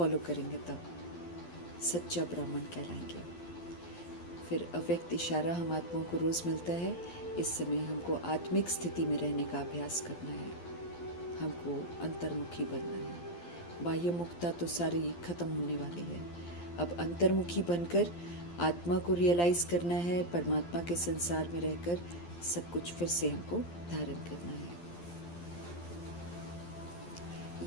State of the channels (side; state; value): right; late; 12 ms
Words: करेंगे तब सच्चा ब्राह्मण कहलाएंगे। फिर अव्यक्त इशारा हम आत्माओं को रोज़ मिलता है। इस समय हमको आत्मिक स्थिति में रहने का अभ्यास करना है, हमको अंतर्मुखी बनना है। बाह्य मुक्ता तो सारी खत्म होने वाली है। अब अंतर्मुखी बनकर आत्मा को रियलाइज़ करना है, परमात्मा के संसार में रहकर सब कुछ फिर से हमको धारण करना है।